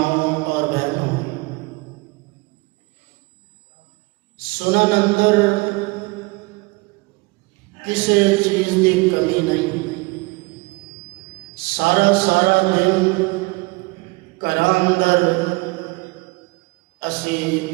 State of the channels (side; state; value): left; quieter; 24.8 dB